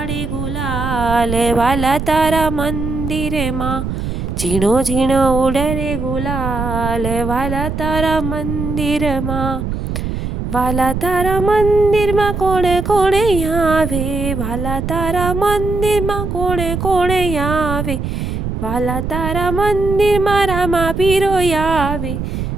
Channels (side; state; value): right; noise; rumble, 4 dB below the sound